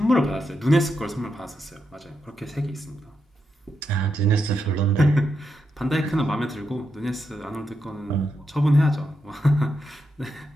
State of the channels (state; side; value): normal; both; correlation 0.84